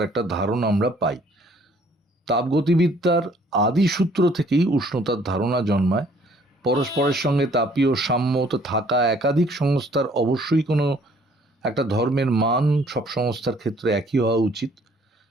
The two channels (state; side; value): normal; both; correlation 0.60